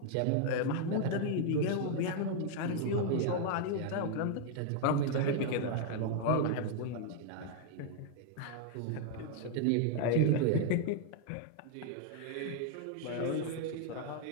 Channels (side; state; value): both; different; correlation 0.00